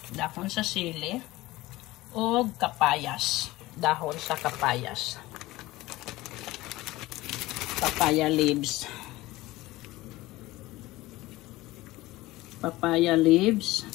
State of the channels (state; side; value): quieter; right; 18.6 dB